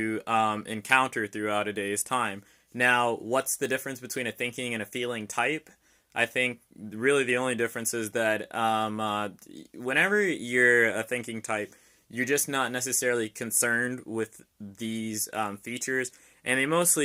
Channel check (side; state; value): both; identical; correlation 1.00